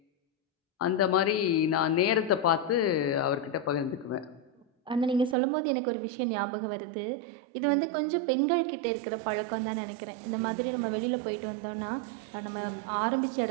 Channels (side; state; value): left; drops out; at 5.4 s